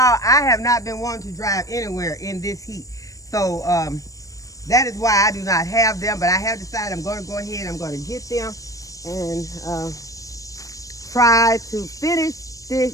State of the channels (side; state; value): right; late; 0.16 ms